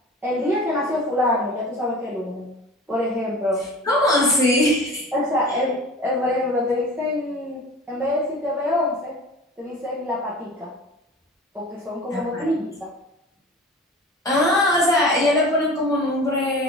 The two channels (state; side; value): normal; both; correlation 0.38